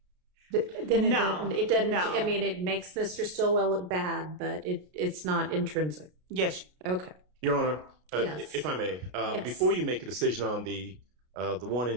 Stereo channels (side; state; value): left; late; 33 ms